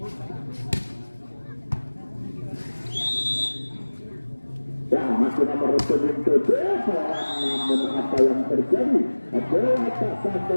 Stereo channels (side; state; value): both; inverted; correlation -1.00